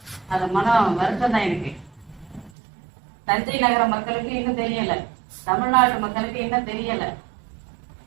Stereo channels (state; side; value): drops out; left; at 2.5 s